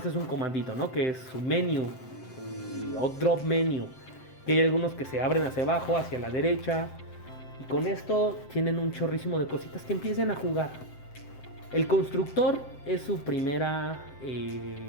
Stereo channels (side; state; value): right; late; 7.8 ms